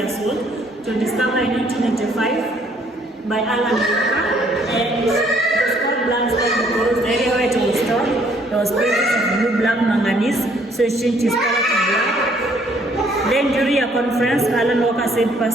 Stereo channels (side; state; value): both; normal; correlation 0.64